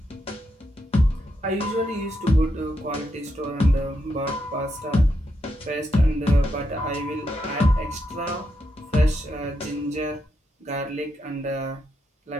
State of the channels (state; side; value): normal; both; correlation 0.82